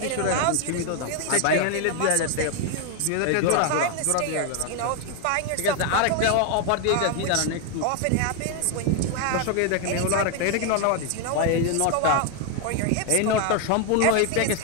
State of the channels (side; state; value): both; different; correlation 0.01